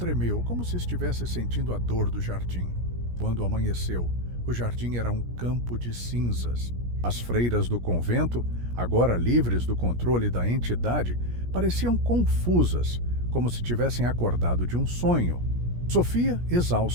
como se estivesse sentindo a dor do jardim. Quando amanheceu, o jardim era um campo de cinzas. As freiras do convento, agora livres do controle da entidade, pareciam confusas, como se tivessem acordado de um sonho. Sofia,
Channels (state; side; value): late; left; 17 ms